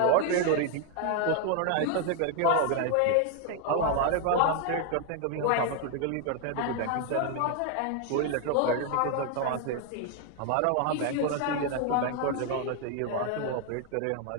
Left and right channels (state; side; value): different; both; correlation 0.00